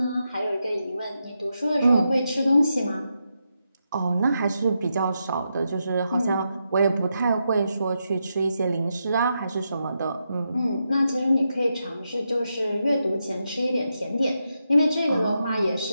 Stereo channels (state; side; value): inverted; both; correlation -0.85